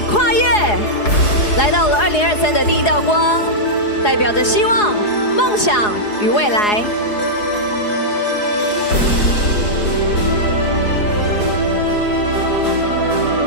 跨越，来到了2023的第一道光，代表着希望、梦想与未来。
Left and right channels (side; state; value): right; late; 4.8 ms